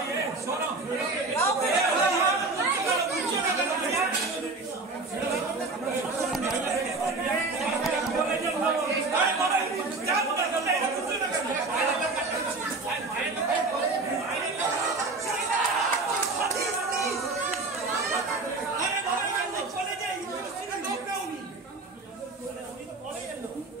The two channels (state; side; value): quieter; left; 3.6 dB